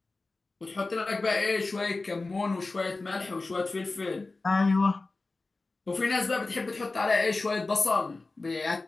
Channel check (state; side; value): quieter; right; 3.5 dB